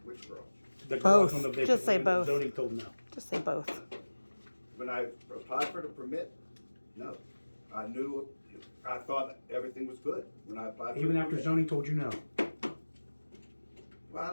Which garage? The garage Both. on the vacant Just say land that both. Zoning told no. Just say both. When I applied for the permit, no. I thought everything was good when I applied for Even the after permit. zoning told you no. Well, I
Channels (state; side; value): inverted; both; correlation -1.00